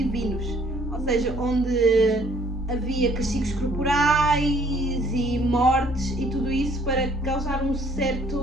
ou seja, onde havia castigos corporais e mortes e tudo isso para causar um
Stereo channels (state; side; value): normal; both; correlation 0.61